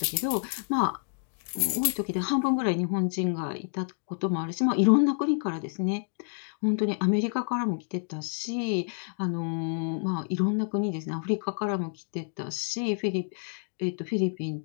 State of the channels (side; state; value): right; silent; digital silence